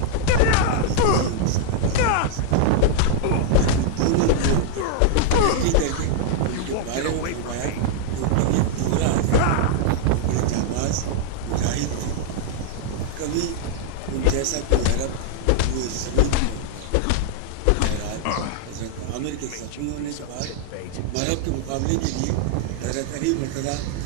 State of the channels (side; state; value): both; different; correlation 0.00